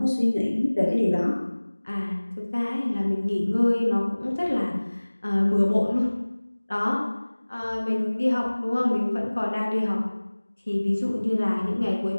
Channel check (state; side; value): inverted; both; correlation -1.00